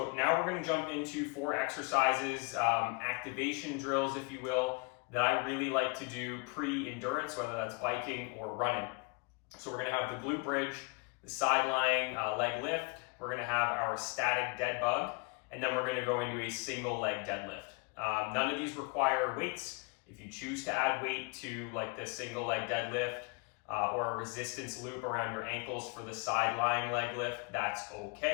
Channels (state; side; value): quieter; right; 31.4 dB